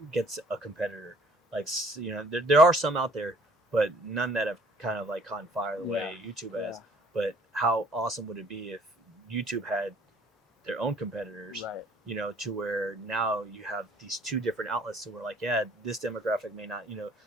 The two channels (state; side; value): normal; both; correlation 0.57